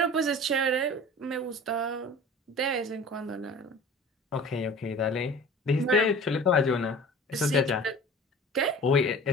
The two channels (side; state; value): both; normal; correlation 0.42